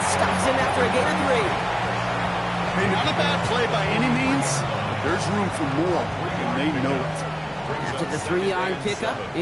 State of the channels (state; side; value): identical; both; correlation 1.00